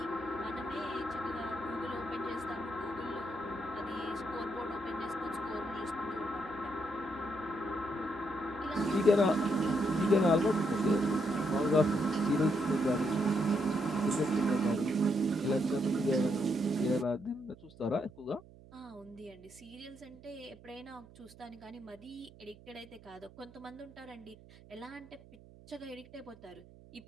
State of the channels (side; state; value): right; noise; hum, 21 dB below the sound